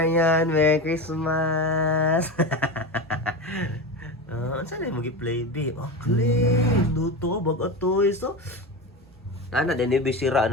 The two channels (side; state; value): both; normal; correlation 0.22